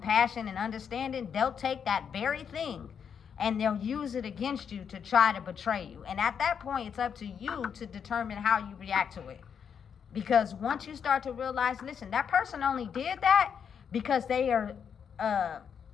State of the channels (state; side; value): quieter; right; 7.3 dB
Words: and understanding, they'll take that very thing and they'll use it against you to try to betray you. And at that point, it's up to you to determine how you react to it. Because once you start to realize, listen, that person only did that because they are